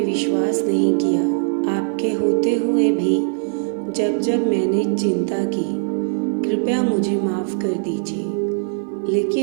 विश्वास नहीं किया, आपके होते हुए भी जब जब मैंने चिंता की, कृपया मुझे माफ़ कर दीजिए,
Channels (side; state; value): left; silent; digital silence